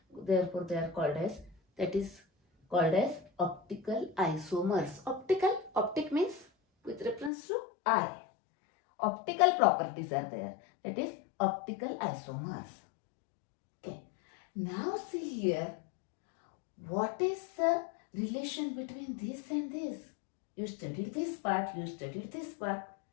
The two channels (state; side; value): drops out; right; at 7.3 s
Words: Therefore, they are called as, that is called as optical isomers. Optic means with reference to eye. Optical properties are there. That is optical isomers. Okay. Now see here, what is the relation between this and this? You studied this part, you studied this part.